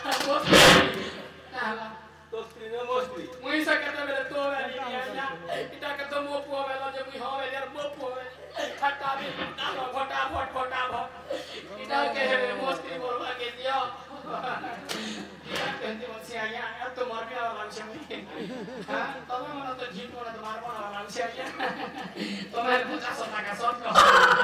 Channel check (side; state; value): both; identical; correlation 1.00